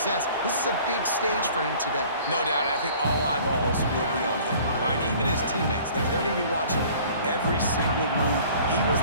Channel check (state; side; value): inverted; both; correlation -0.50